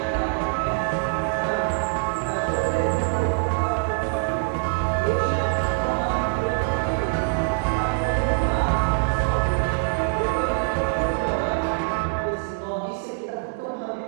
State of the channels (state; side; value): quieter; left; 37.0 dB